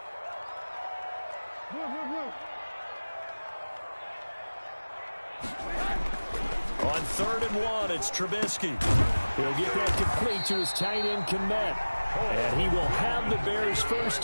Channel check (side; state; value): both; inverted; correlation -1.00